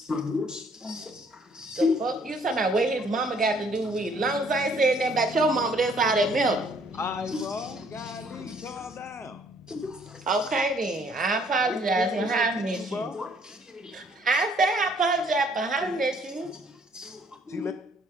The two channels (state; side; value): normal; both; correlation 0.62